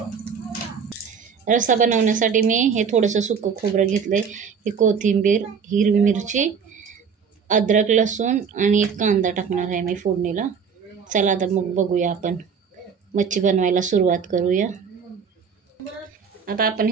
रस्सा बनवण्यासाठी मी हे थोडंसं सुकं खोबरं घेतलंय, ही कोथिंबीर, हिरवी मिरची, अद्रक, लसूण आणि एक कांदा टाकणार आहे मी फोडणीला। चला तर मग बघूया, आपण मच्छी बनवायला सुरुवात करूया। आता आपण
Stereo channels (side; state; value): left; quieter; 6.4 dB